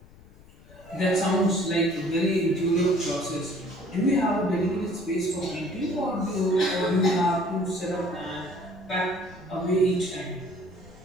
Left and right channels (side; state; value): left; noise; rumble, 23 dB below the sound